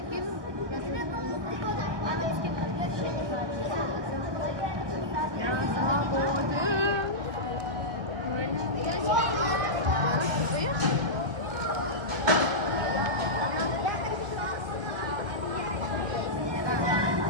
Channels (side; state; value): left; late; 1.3 ms